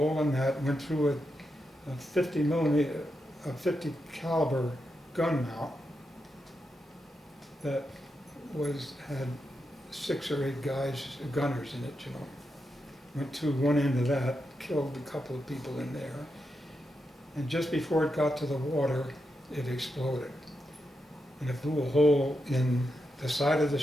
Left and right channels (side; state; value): both; normal; correlation 0.86